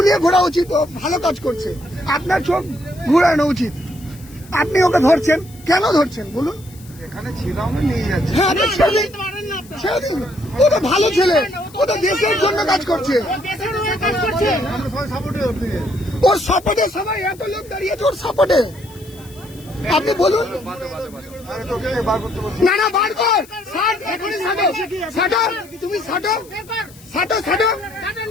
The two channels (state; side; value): noise; left; hiss, 23 dB below the sound